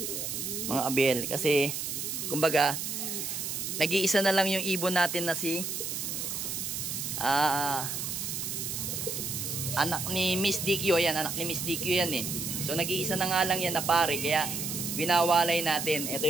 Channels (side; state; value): right; noise; hiss, 4 dB below the sound